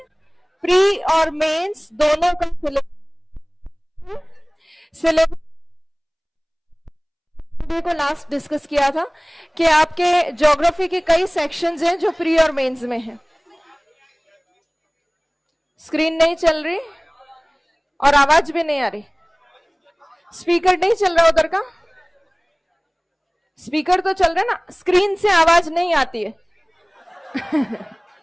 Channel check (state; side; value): identical; both; correlation 1.00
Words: प्री और मेंस दोनों का सिलेबस को लास्ट डिस्कस किया था कि आपके ज्योग्राफी के कई सेक्शंस हैं जो प्री और मेंस में हैं। स्क्रीन नहीं चल रही और आवाज भी नहीं आ रही। स्पीकर नहीं चल रहा उधर का? स्पीकर तो चल रहा है ना, स्क्रीन से आवाज नहीं आती है।